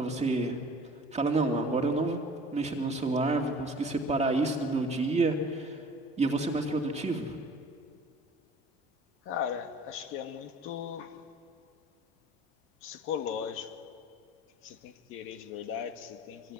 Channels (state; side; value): normal; both; correlation 0.47